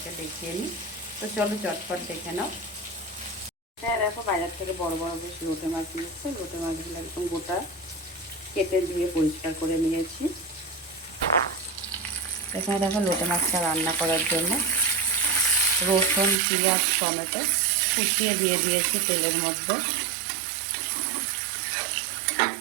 দেখিয়ে নিই। তো চলো চটপট দেখে নাও। হ্যাঁ দেখো, বাজার থেকে বড় বড় বেশ লোটে মাছ নিয়েছে। লোটে মাছগুলো একদম গোটা কেটে ধুয়ে পরিষ্কার করে নিয়েছি। এখানে দেখো লোটে মাছটা রান্না করার জন্য রসুন, পেঁয়াজ, টমেটো কুচিয়ে দিয়ে দিয়েছি তেলের মধ্যে।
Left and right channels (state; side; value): drops out; left; at 16.4 s